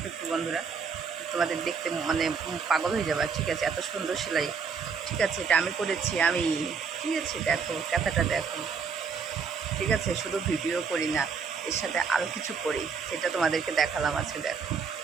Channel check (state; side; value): quieter; left; 5.8 dB